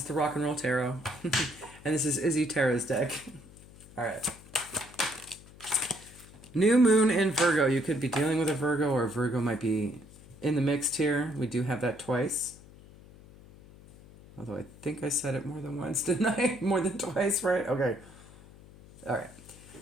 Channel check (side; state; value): left; noise; hum, 21 dB below the sound